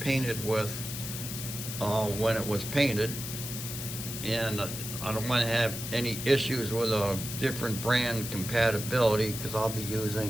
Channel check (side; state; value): left; noise; hiss, 7 dB below the sound